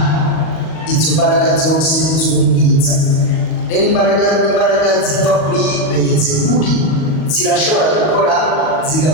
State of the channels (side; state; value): right; late; 38 ms